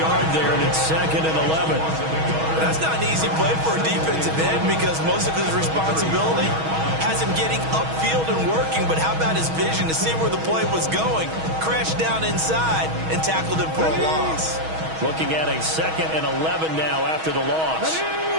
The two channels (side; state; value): left; late; 6.3 ms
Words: there, and it's 2nd and 11. That's not an easy play for a defensive end because most of his responsibility has him getting upfield and working, but how about his vision to see where the play was going, crashed down inside, and tackled him for a loss. Looking at a 2nd and 11 now after the loss.